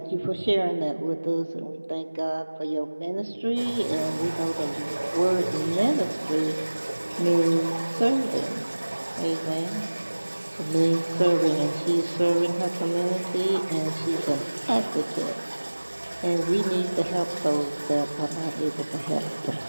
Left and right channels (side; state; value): both; inverted; correlation -1.00